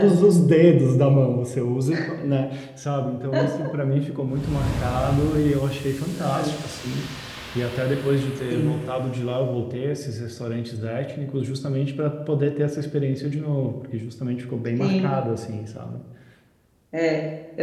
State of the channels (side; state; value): both; identical; correlation 1.00